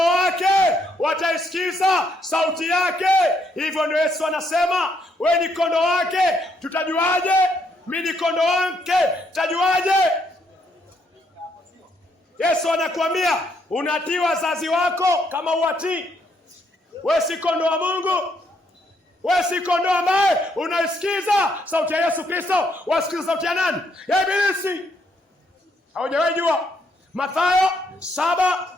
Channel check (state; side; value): normal; both; correlation 0.73